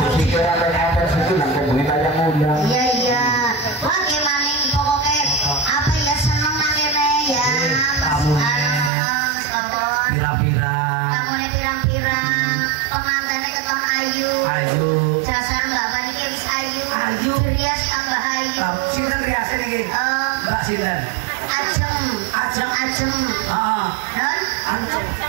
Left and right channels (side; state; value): left; drops out; at 8.9 s